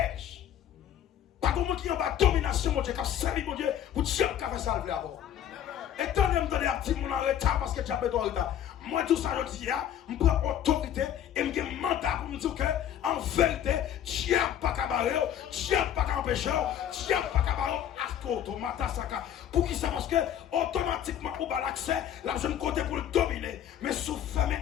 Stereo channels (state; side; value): quieter; right; 10.3 dB